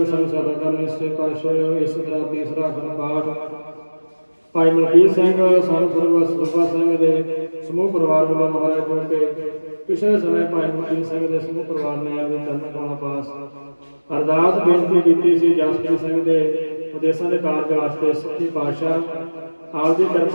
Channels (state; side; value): inverted; both; correlation -1.00